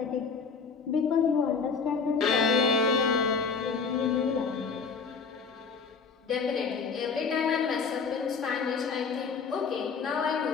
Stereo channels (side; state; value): right; quieter; 5.3 dB